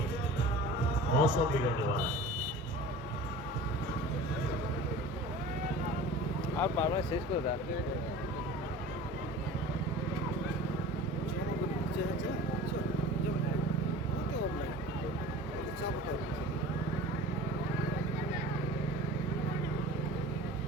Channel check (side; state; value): both; normal; correlation 0.39